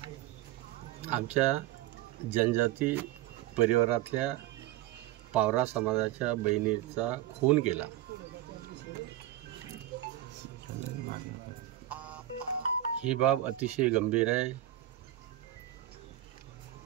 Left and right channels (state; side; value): quieter; left; 13.6 dB